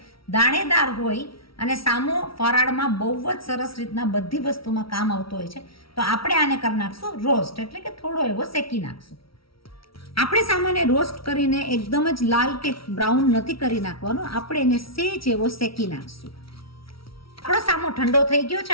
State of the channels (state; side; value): late; right; 0.75 ms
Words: દાણેદાર હોય અને સામો ફરાળમાં બહુ જ સરસ રીતના બધી વસ્તુમાં કામ આવતો હોય છે. તો આપણે આને કરી નાખશું રોસ્ટ, એટલે કે થોડો એવો શેકી નાખશું. આપણે સામાન્ય રોસ્ટ કરીને એકદમ જ લાલ કે બ્રાઉન નથી કરી નાખવાનો, આપણે એને સેજ એવો શેકી નાખશું. આપણો સામો ઠંડો થઈ ગયો